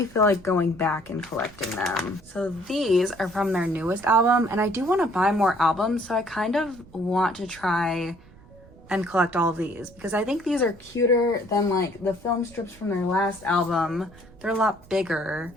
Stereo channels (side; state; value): right; noise; rumble, 23 dB below the sound